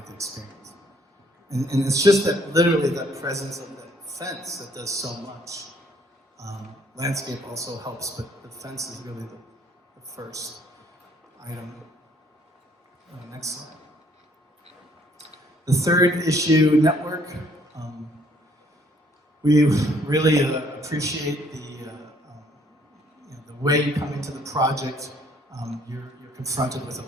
the experience. And it's just that, literally, that presence of that fence that does so much. Landscape also helps, but the fence is really the first item. Next slide. The third issue, network. We really appreciate the way you come into the project. You're confronted with a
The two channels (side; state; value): both; normal; correlation 0.64